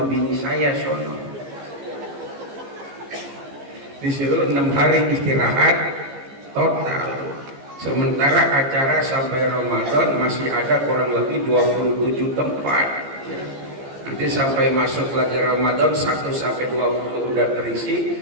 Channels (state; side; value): late; left; 15 ms